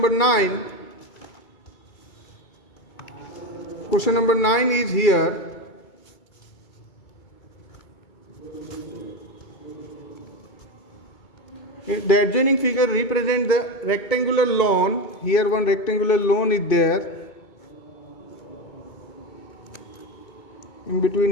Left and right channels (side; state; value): right; late; 2.2 ms